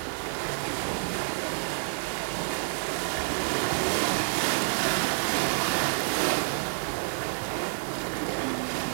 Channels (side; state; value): left; silent; digital silence